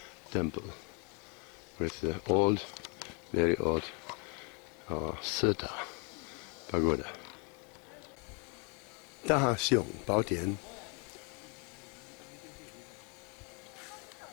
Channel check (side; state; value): right; quieter; 34.1 dB